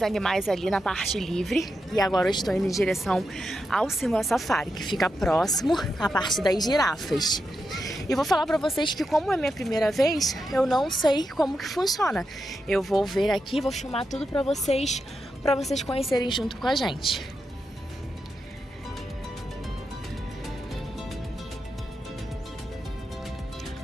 animais ali na parte livre. E agora eu estou indo em direção ao Simba Safari, que fica próximo à parte das girafas. E vou falar pra vocês que, como é minha primeira vez, eu não sei como que funciona. Eu vou ver aqui, vou filmar tudo pra vocês conhecerem junto com a gente.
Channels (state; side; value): normal; both; correlation 0.86